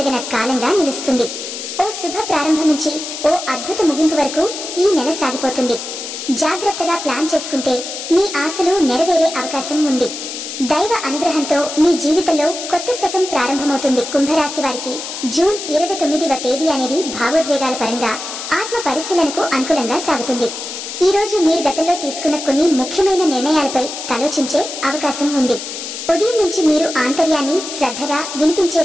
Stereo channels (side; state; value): left; noise; hiss, 8 dB below the sound